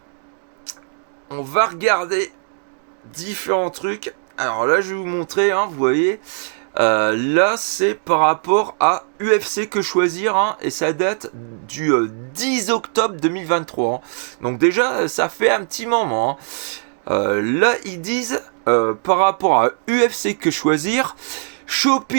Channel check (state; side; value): silent; left; 66 dB below the other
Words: va regarder différents trucs. Alors là, je vais vous montrer, hein, vous voyez. Là, c'est par rapport à UFC que choisir, hein, et ça date du 10 octobre 2023. Hein. Donc déjà, ça fait un petit moment. Hein. Là, ils disent, par rapport à UFC que choisir,